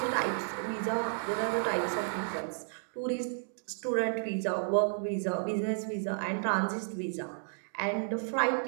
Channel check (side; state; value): left; silent; digital silence